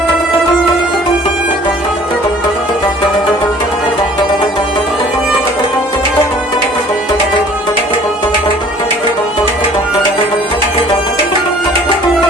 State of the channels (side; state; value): both; normal; correlation 0.52